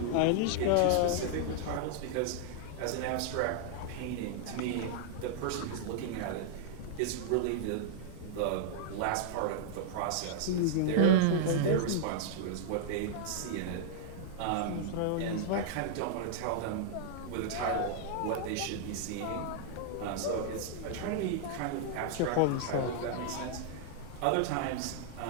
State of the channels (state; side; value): different; both; correlation -0.01